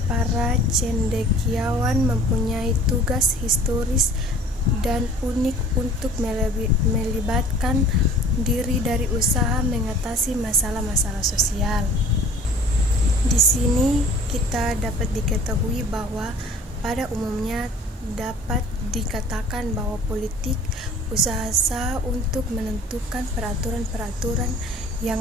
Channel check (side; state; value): both; normal; correlation 0.48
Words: para cendekiawan mempunyai tugas historis dan unik untuk melibatkan diri dari usaha mengatasi masalah-masalah sosial. Di sini kita dapat diketahui bahwa pada umumnya dapat dikatakan bahwa politik usaha untuk menentukan peraturan-peraturan